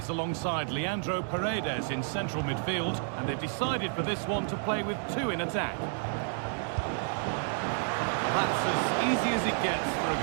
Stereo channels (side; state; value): left; silent; 57 dB below the other